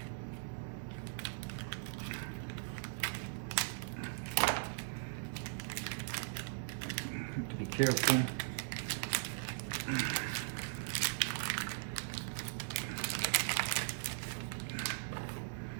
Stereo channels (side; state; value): left; silent; digital silence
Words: Have to be careful.